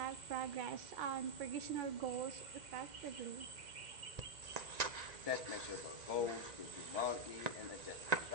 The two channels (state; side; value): late; left; 1.9 ms